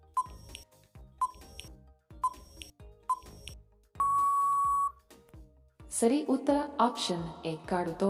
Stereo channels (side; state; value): both; identical; correlation 1.00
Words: ಸರಿ ಉತ್ತರ ಆಪ್ಷನ್ ಎ ಕಾಡು